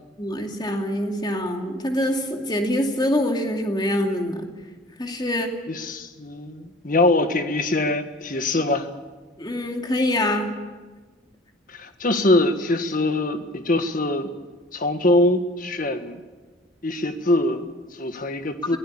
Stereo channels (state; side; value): normal; both; correlation 0.47